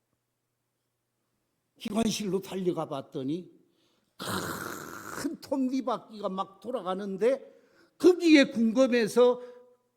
기관실로 달려가 봤더니 큰 톱니바퀴가 막 돌아가는데 거기에 궁금해서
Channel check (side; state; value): both; identical; correlation 1.00